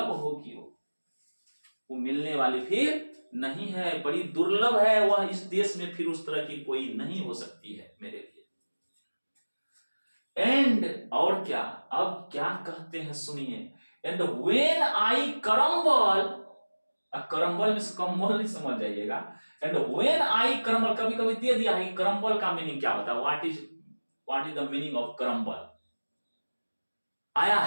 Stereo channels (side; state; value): both; inverted; correlation -1.00